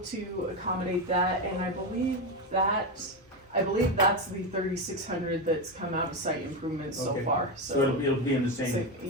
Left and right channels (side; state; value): both; normal; correlation 0.12